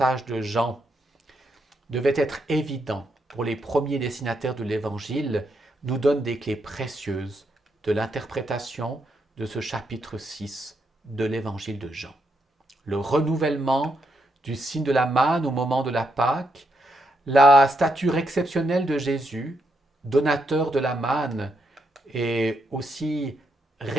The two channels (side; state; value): both; normal; correlation 0.79